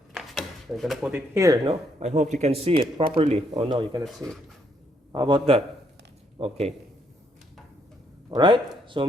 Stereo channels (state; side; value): normal; both; correlation 0.73